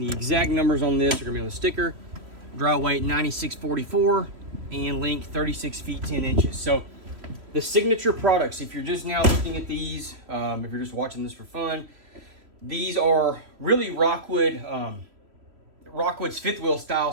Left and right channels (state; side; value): late; left; 3.1 ms